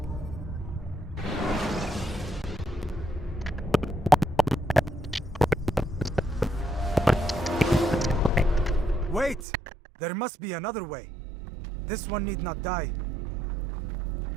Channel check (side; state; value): left; drops out; at 9.5 s